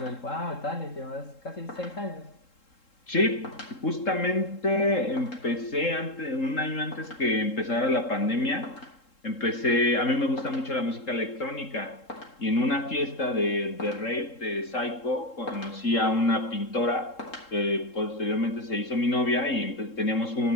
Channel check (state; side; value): late; right; 3.7 ms